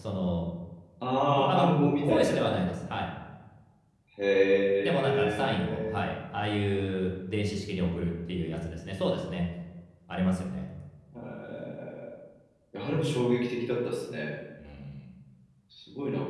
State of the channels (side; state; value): both; identical; correlation 1.00